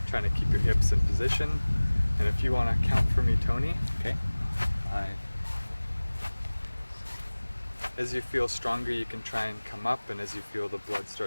trying to keep your hips in position. And if you want to count for me, Tony. Okay. 5. As you feel stronger, you can try and come up, and as you feel the blood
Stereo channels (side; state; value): both; inverted; correlation -1.00